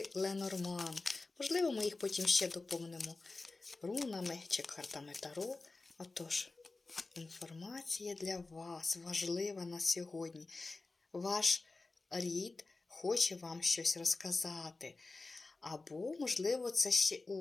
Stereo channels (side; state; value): right; quieter; 3.5 dB